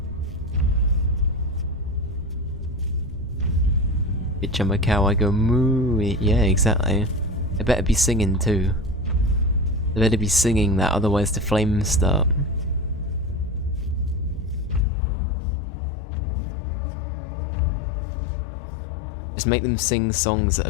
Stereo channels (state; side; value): drops out; right; at 14.9 s